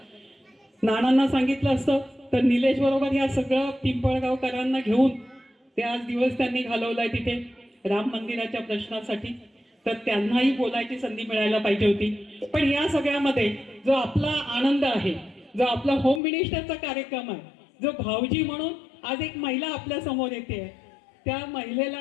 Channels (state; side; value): drops out; right; at 16.2 s